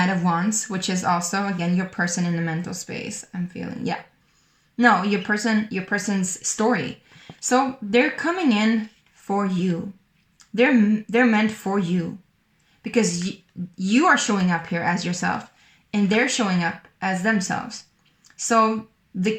of Wands, which is also, again, your person in the mental space, I'm feeling. Yeah. No, your person's story. So they're coming in for you. They're meant for you. Because you are showing up here as yourself, and they're showing up as themselves. So the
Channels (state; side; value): identical; both; correlation 1.00